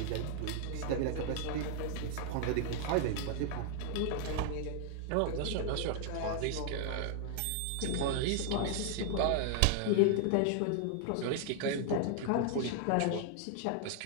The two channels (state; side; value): different; both; correlation 0.00